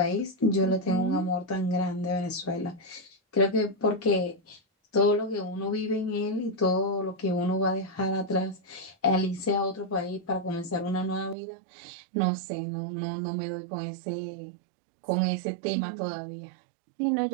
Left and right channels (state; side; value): drops out; left; at 11.4 s